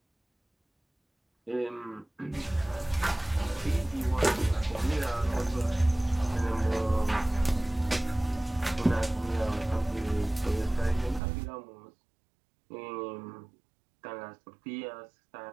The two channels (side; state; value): left; drops out; at 11.2 s